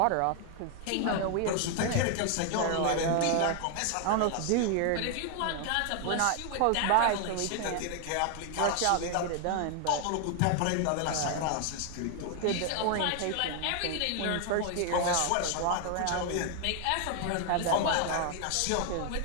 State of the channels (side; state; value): both; different; correlation 0.00